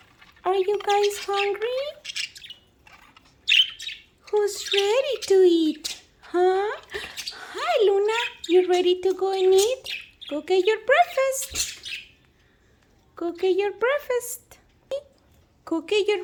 Are you guys hungry? Who's ready to eat? Huh? Hi, Luna. You ready to go and eat? Go get your breakfast. Go get your breakfast. Cookie, you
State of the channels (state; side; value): identical; both; correlation 1.00